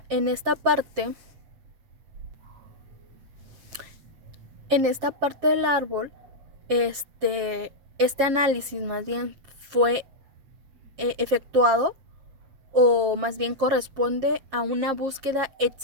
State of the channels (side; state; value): left; late; 7.4 ms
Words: parte del árbol, este análisis más bien fue efectuado, o más bien corresponde a una búsqueda